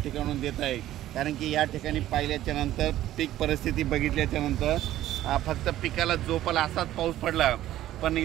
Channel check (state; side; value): quieter; left; 13.7 dB